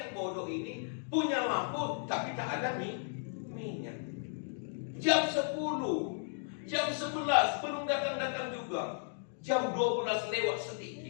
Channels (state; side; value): silent; right; digital silence